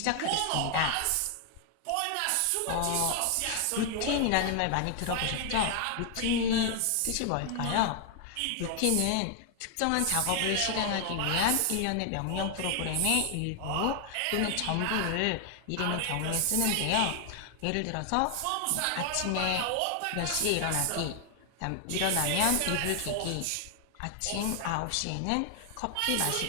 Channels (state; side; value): different; both; correlation 0.00